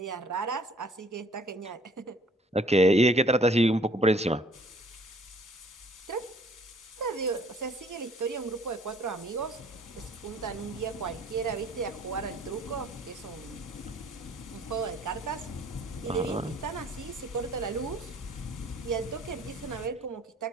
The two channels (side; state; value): both; normal; correlation 0.56